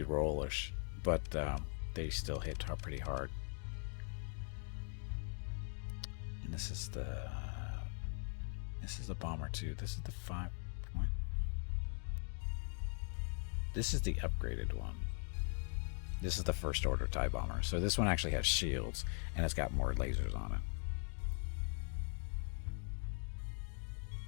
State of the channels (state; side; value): silent; right; 50 dB below the other